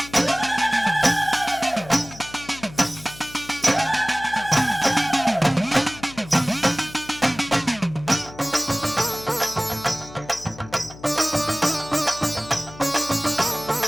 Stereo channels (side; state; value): left; noise; hum, 18 dB below the sound